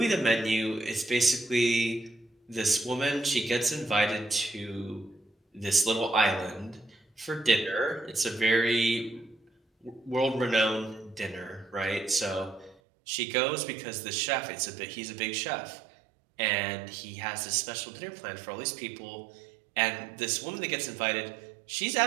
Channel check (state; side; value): drops out; left; at 12.8 s